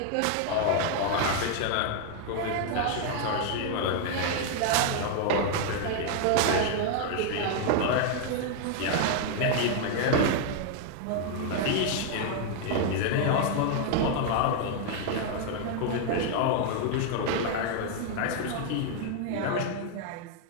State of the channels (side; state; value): both; different; correlation 0.00